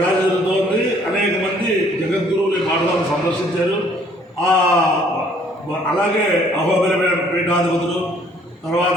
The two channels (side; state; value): both; normal; correlation 0.61